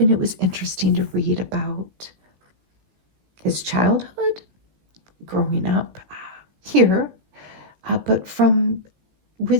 it was interesting to read about his childhood, growing up here, but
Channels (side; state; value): left; late; 16 ms